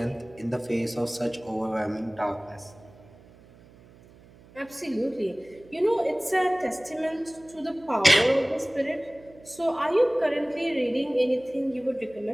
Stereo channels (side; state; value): right; noise; hum, 24 dB below the sound